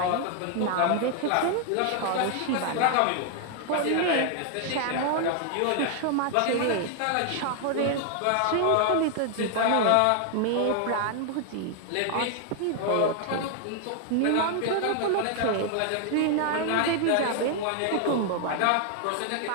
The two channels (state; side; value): different; both; correlation 0.00